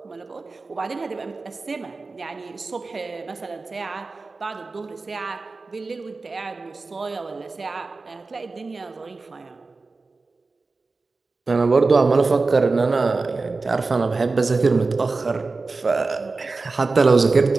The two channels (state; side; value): quieter; left; 3.8 dB